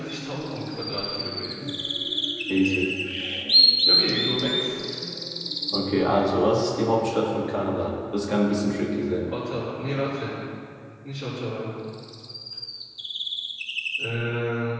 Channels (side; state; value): both; identical; correlation 1.00